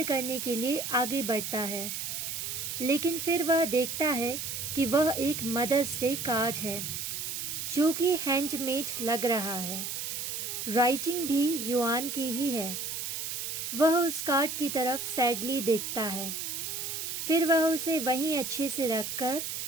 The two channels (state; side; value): noise; right; hiss, 4 dB below the sound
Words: करने के लिए आगे बढ़ता है, लेकिन फिर वह देखता है कि वह एक मदर्स डे कार्ड है जो कि हैंडमेड लग रहा है। राइटिंग भी युआन की ही है। वह उस कार्ड की तरफ सैडली देखता है, फिर वह उसे वहीं अच्छे से रखकर